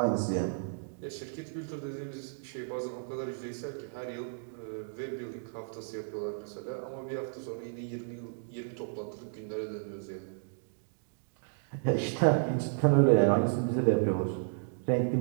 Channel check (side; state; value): left; silent; digital silence